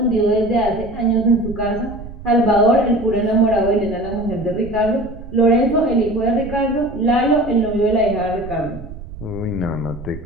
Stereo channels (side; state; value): right; noise; rumble, 14 dB below the sound